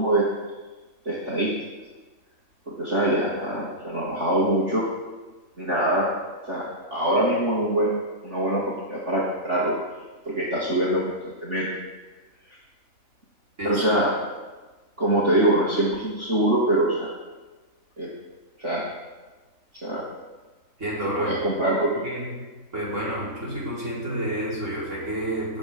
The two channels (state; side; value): late; left; 3.4 ms